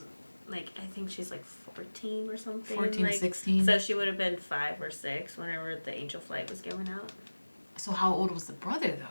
Like, I think she's like 14 or something. 14 like, to 16. So she would have been 5 or 6 whenever the angel flight was going out. So how old was the brother,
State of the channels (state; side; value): inverted; both; correlation -1.00